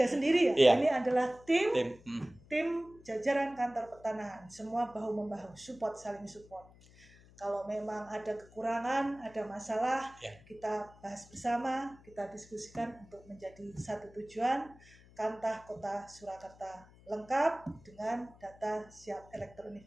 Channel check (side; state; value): left; noise; hum, 24 dB below the sound